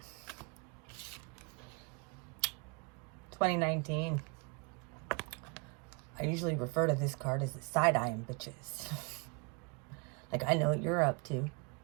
2019. I usually refer to this card as the side-eyeing bitches. Like, I know what you're up to.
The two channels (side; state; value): left; quieter; 32.7 dB